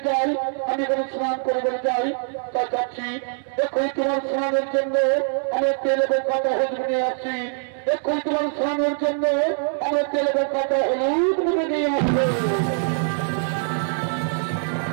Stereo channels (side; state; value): left; silent; 63 dB below the other